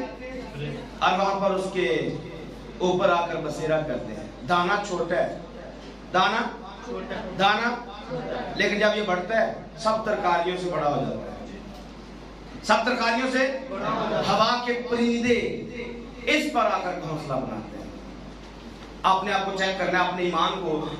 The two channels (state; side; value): identical; both; correlation 1.00